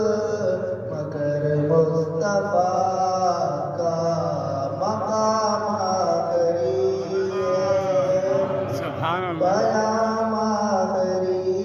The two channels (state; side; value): identical; both; correlation 1.00